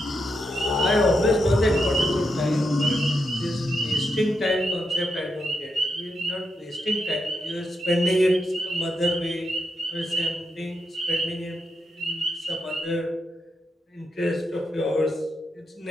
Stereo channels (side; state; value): both; normal; correlation 0.84